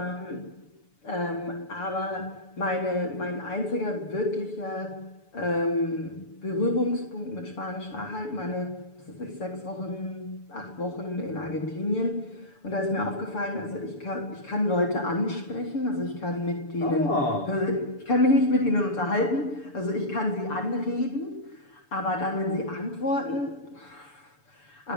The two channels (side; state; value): right; late; 6.9 ms